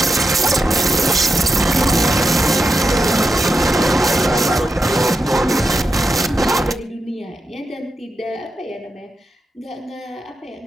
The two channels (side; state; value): both; normal; correlation 0.87